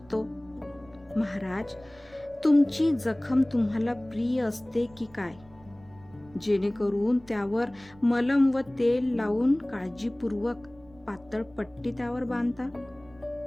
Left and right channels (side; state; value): right; noise; rumble, 25 dB below the sound